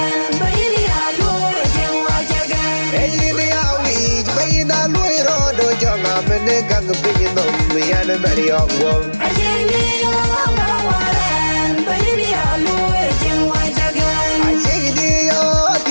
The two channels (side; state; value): both; inverted; correlation -1.00